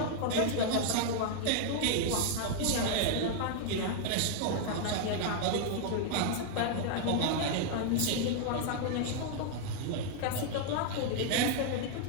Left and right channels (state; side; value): different; both; correlation 0.00